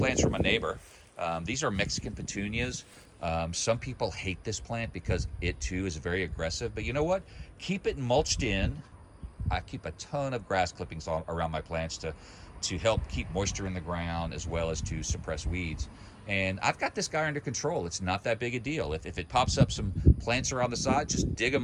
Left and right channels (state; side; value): identical; both; correlation 1.00